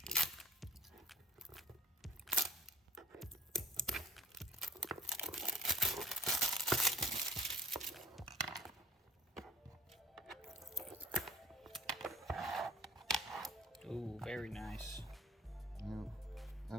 Ooh, very nice. Yeah,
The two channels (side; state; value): both; normal; correlation 0.51